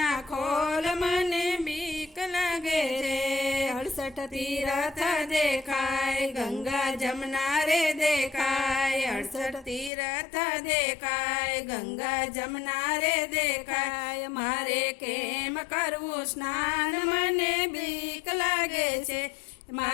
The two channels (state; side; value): drops out; right; at 9.9 s